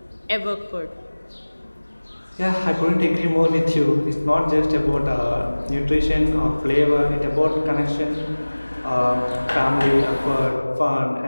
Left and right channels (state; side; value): inverted; both; correlation -1.00